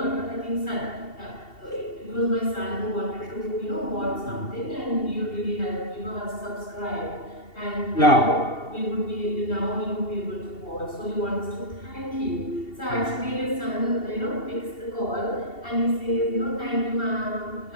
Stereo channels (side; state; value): right; late; 2.7 ms